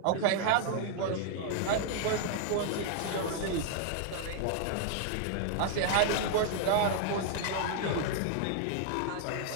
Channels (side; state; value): both; different; correlation 0.00